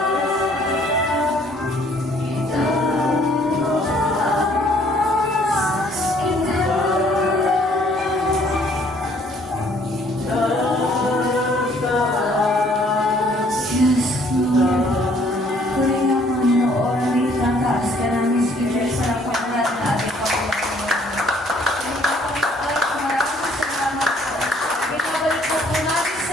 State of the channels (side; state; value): both; normal; correlation 0.61